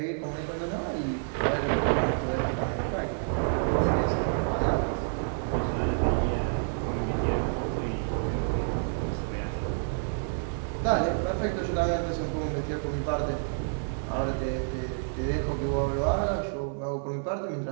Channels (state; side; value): silent; left; 58 dB below the other